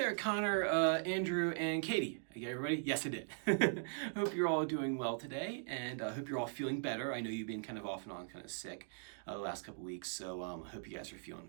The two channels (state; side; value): silent; left; digital silence